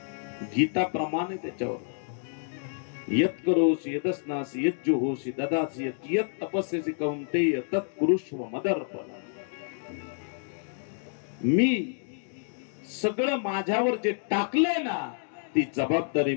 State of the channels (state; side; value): silent; right; digital silence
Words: गीता प्रमाणे त्याच्यावर यत करोसी यदस्नासी यत जुहोसी ददासी यत तपस्यसी कौंतेय तत्कुरुष्व मदर्पण. मी सगळं माझ्यावर जे टाकलंय ना ती जबाबदारी